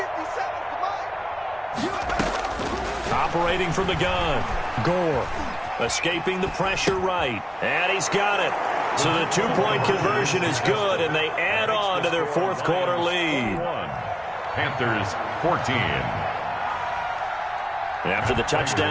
Operating from the gun, Gore. Escaping the pressure right, and he's got it. So the two-point conversion is good, and they add on to their fourth quarter lead. Panthers 14. After the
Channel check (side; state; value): both; identical; correlation 1.00